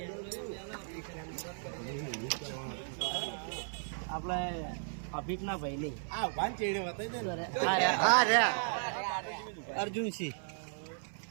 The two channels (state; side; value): silent; left; 54 dB below the other